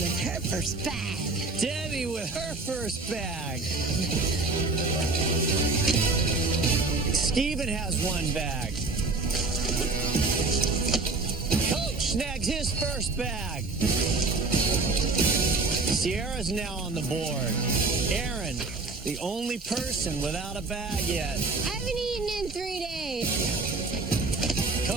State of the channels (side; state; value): left; quieter; 3.6 dB